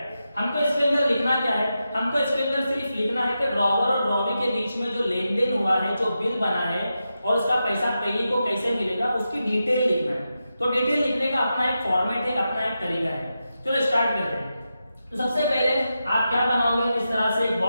हमको इसके अंदर लिखना क्या है? हमको इसके अंदर सिर्फ लिखना है कि ड्रॉवर और ड्रॉवी के बीच में जो लेन देन हुआ है, जो बिल बना है और उसका पैसा पेई को कैसे मिलेगा उसकी डिटेल लिखना है। तो डिटेल लिखने का अपना एक फॉर्मेट है, अपना एक तरीका है। चलो स्टार्ट करते हैं। तो सबसे पहले आप क्या बनाओगे? इस तरह से एक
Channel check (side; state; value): both; inverted; correlation -0.89